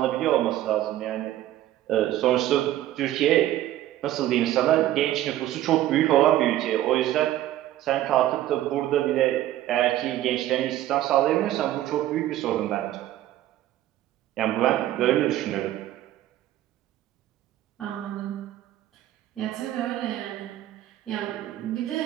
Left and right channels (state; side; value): quieter; left; 13.6 dB